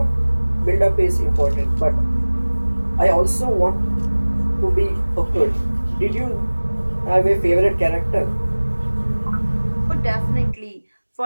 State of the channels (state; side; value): inverted; both; correlation -1.00